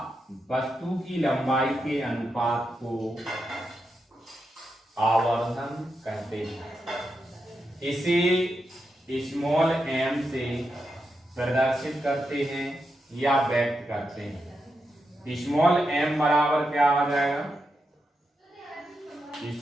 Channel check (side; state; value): both; normal; correlation 0.86